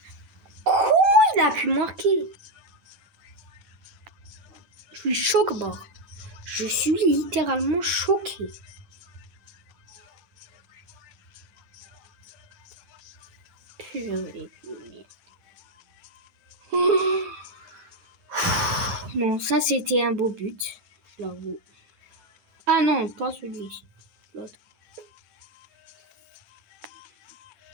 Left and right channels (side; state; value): left; late; 10 ms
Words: Comment il a pu marquer? Je suis choqué, bord. Je suis littéralement choqué. Purée de merde. Non, ça c'était un beau but, je l'avoue. Ah non, pas celui-ci. L'autre.